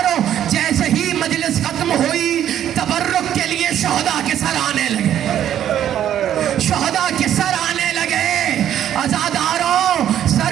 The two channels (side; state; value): left; quieter; 10.7 dB